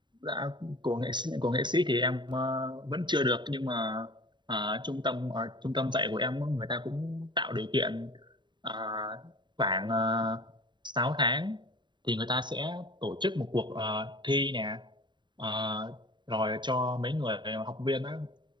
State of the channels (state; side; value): late; left; 0.22 ms